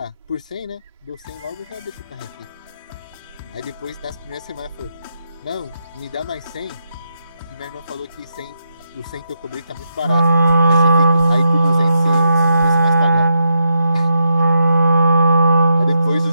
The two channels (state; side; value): inverted; both; correlation -0.82